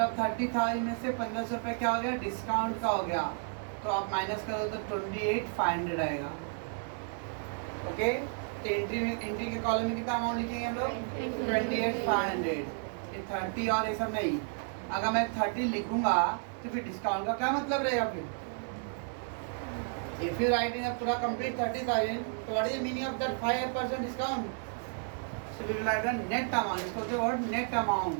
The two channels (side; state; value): left; silent; 56 dB below the other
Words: 30,000 में से 1500 रुपये क्या हो गया? डिस्काउंट का हो गया, तो आप माइनस करो तो 28,500 आएगा। ओके, तो एंट्री के कॉलम में कितना अमाउंट लिखेंगे हम लोग? 28,500। ये 30 और ये सब नहीं। अगर मैं 30 लिखूंगा तो फिर डिस्काउंट का क्या मतलब रहेगा? फिर इफ यू राइट इन पूरा कंप्लीट 30,000, तो what is the meaning of that 5% discount? So we will write net amount. इसको होते वर्ड नेट अमाउंट,